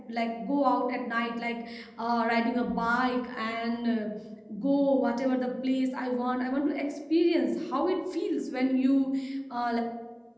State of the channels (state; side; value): identical; both; correlation 1.00